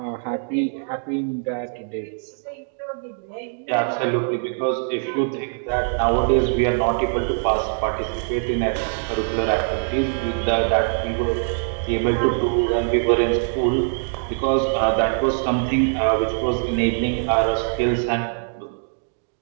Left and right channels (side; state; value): left; silent; digital silence